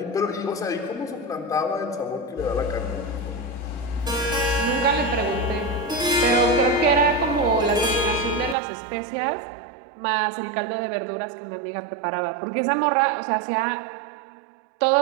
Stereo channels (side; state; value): left; drops out; at 8.6 s